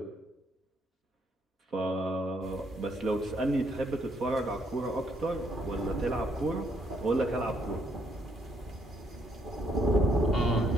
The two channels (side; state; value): both; normal; correlation 0.72